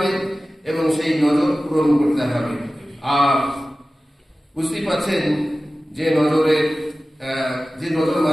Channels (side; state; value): both; normal; correlation 0.96